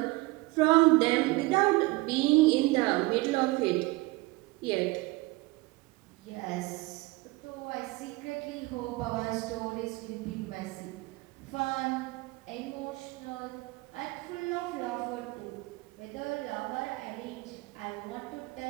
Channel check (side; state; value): left; quieter; 22.0 dB